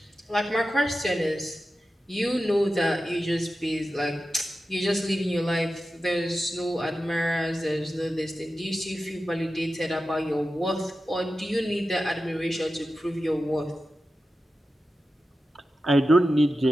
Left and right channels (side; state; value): both; normal; correlation 0.92